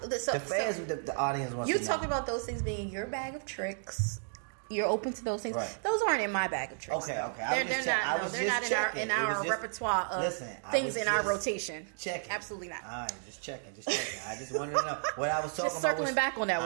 the fans, the audience wants to know. You talking about those things being your bag of tricks. You're open to those things. Right. Those aren't in my bag of tricks. Okay. I was just checking. In our repertoire of things in our rotation. Checking. Absolutely not. All right, just checking. I just wanted to know what I was talking about. Circling back on that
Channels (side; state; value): left; silent; digital silence